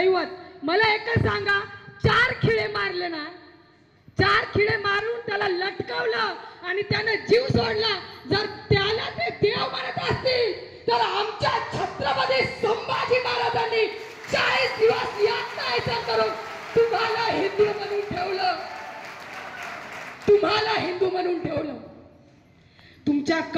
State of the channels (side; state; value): both; identical; correlation 1.00